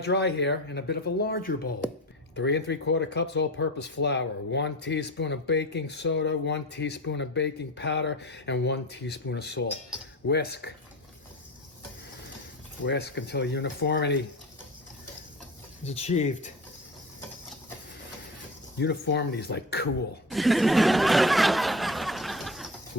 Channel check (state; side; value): normal; both; correlation 0.30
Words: here in a bit of a larger bowl. 3 3/4 cups all-purpose flour, 1 teaspoon of baking soda, 1 teaspoon of baking powder, and 1 teaspoon of salt. Whisk. Whisk until uniformity is achieved. Uniformity is like cool.